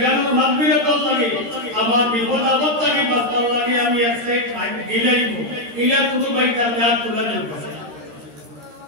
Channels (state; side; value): late; left; 13 ms